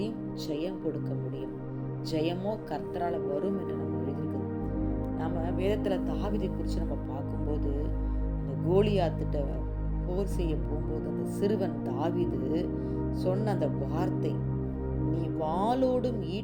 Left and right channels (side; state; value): both; identical; correlation 1.00